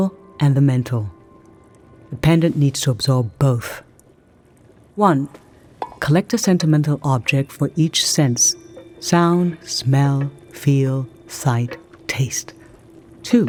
and the mental. The pendant needs to absorb both. 1. Collect a sentimental object for each sense: sound, smell, feel, sight, taste.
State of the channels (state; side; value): identical; both; correlation 1.00